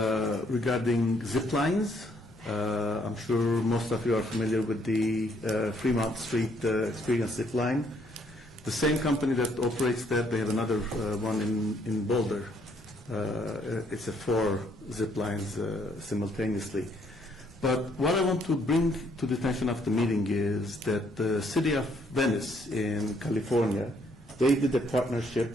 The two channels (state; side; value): normal; both; correlation 0.68